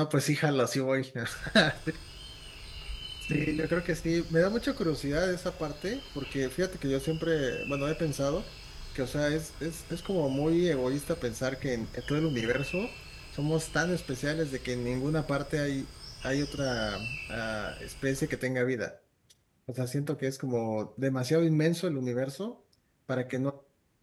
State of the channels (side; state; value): both; identical; correlation 1.00